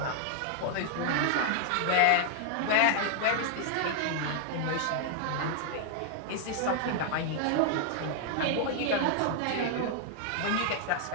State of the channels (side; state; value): both; different; correlation -0.01